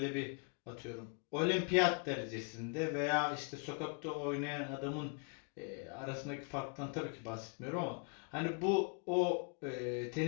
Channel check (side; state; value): right; quieter; 36.0 dB